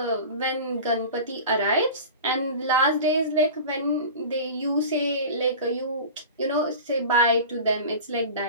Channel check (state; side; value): inverted; both; correlation -0.35